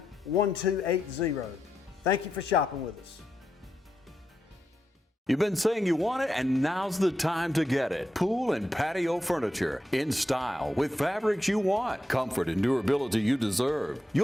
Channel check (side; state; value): both; normal; correlation 0.86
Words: Thank you for shopping with us. You've been saying you want it, and now's the time to get it. Pool and patio furniture in style with fabrics you want, comfort and durability you deserve.